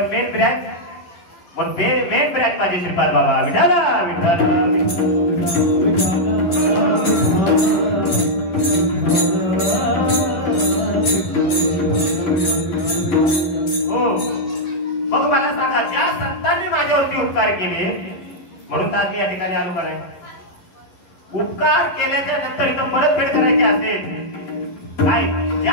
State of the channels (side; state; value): right; late; 12 ms